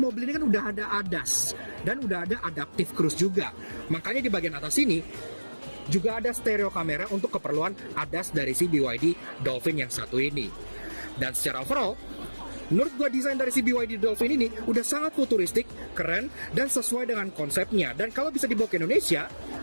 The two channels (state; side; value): inverted; both; correlation -1.00